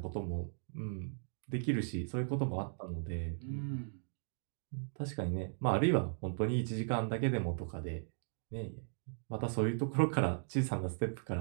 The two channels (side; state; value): left; silent; digital silence